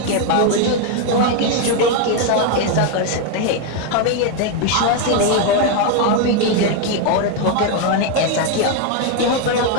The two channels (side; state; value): both; different; correlation 0.01